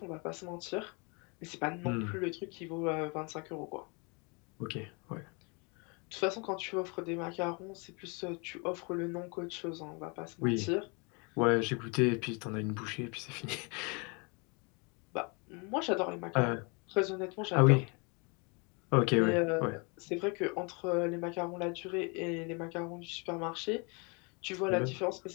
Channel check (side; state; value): right; quieter; 31.9 dB